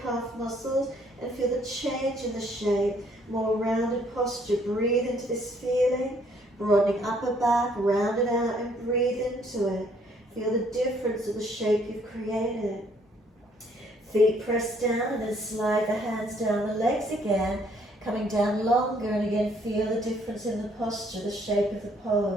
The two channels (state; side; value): normal; both; correlation 0.65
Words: muscles and feel the change in the shape, more rounded posture. Breathe into this feeling, broadening upper back, round it out and breathe into it. Feel the difference of the shape you've created. Feet press down and then slide the hands down the legs again, coming down longer, and again feel the difference in the posture, the shape of the